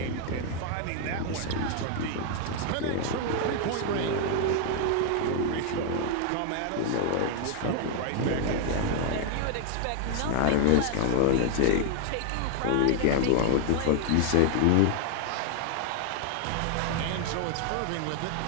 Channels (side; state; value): both; different; correlation 0.00